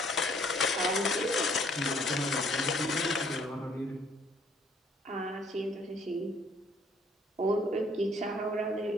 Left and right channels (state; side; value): normal; both; correlation 0.61